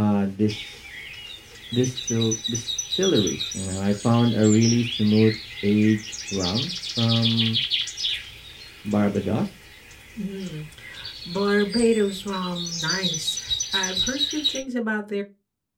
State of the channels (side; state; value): both; identical; correlation 1.00